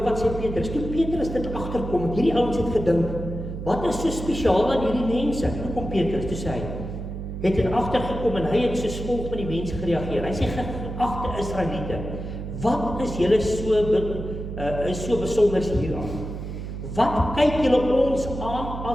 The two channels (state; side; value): noise; right; hum, 7 dB below the sound